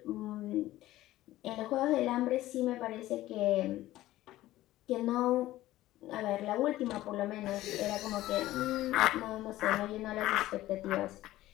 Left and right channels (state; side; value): quieter; right; 15.7 dB